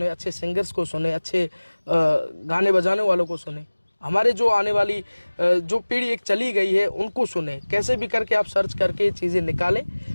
अच्छे सिंगर्स को सुने, अच्छे गाने बजाने वालों को सुने। हमारे जो आने वाली जो पीढ़ी एक चली गई है उनको सुने, कैसे भी करके आप सर्च करके चीज़ें निकालें,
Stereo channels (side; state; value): both; inverted; correlation -1.00